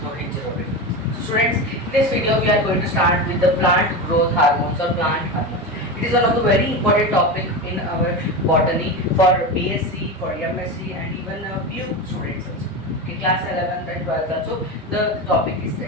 Rohit Jirobe. So students, in this video we are going to start with the plant growth hormones or plant hormones. It is one of the very important topic in our botany for BSc, for MSc and even few students also. In class 11th and 12th also the topic is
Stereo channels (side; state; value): both; normal; correlation 0.21